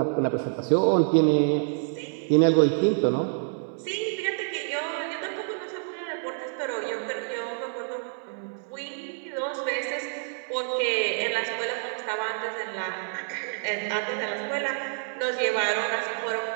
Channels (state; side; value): silent; left; 58 dB below the other